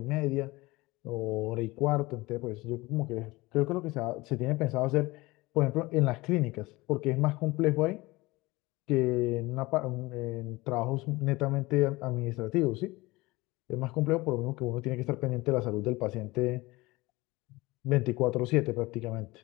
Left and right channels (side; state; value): right; quieter; 21.4 dB